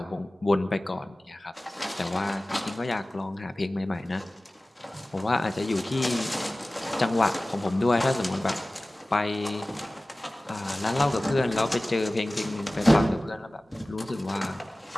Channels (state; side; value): normal; both; correlation 0.97